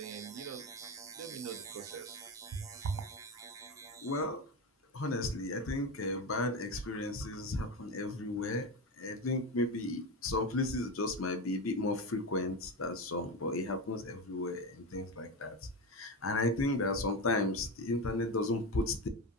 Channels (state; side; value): normal; both; correlation 0.19